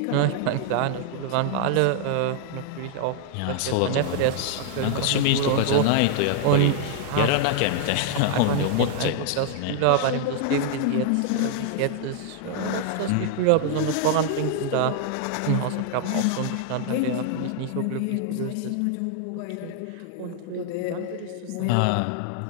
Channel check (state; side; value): different; both; correlation 0.00